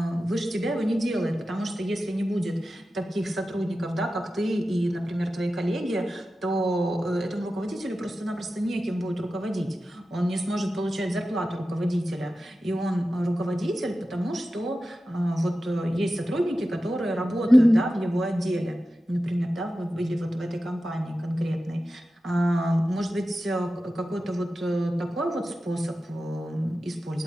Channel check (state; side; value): normal; both; correlation 0.93